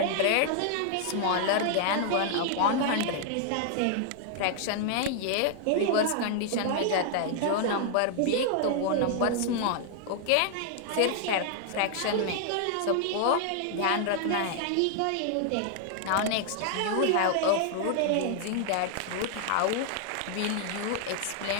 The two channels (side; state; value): both; different; correlation 0.00